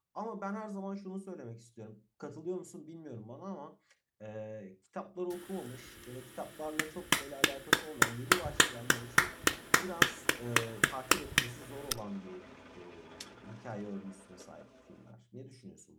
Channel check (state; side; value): identical; both; correlation 1.00